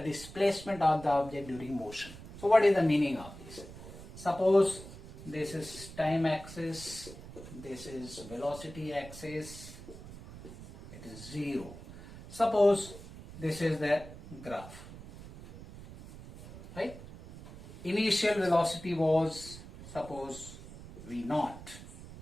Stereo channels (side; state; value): right; noise; rumble, 15 dB below the sound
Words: of the object during motion. So what is the meaning of this? Suppose this is time axis, this is velocity axis, it is 0. Suppose this is the graph, right? Initial velocity was, suppose, v0.